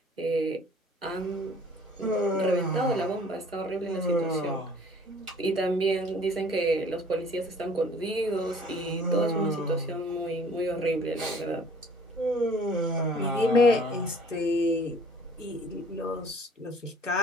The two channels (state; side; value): normal; both; correlation 0.53